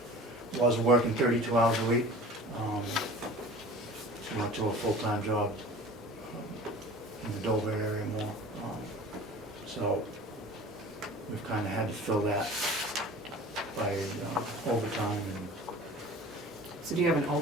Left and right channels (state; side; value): normal; both; correlation 0.41